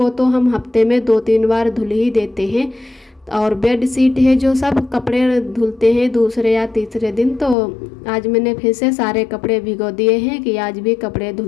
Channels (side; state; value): right; drops out; at 7.6 s